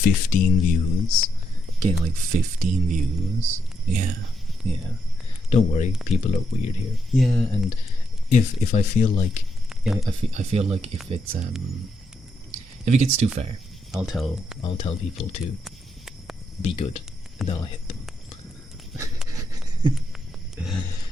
views. Getting like 15 views. Yeah, yeah. Don't worry, people are weird here. Yeah, and if I feel like, yeah, I feel like if it gets too far, I'll tell people to be good, and then I'll hit them.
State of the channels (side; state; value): both; normal; correlation 0.80